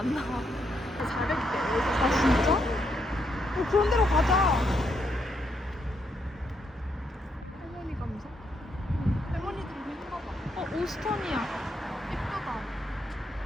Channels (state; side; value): normal; both; correlation 0.77